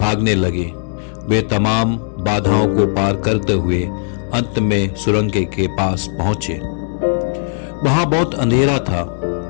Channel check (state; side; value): silent; right; digital silence